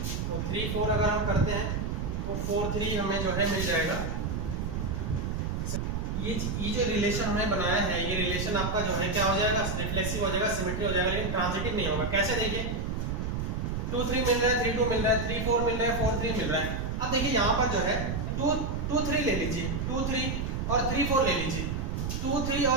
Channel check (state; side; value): noise; right; rumble, 2 dB below the sound